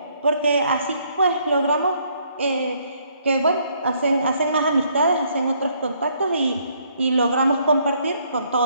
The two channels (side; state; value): both; inverted; correlation -0.68